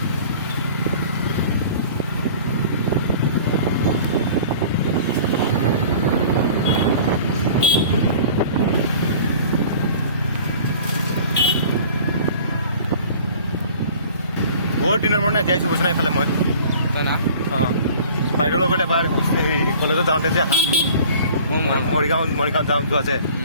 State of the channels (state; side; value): inverted; both; correlation -0.45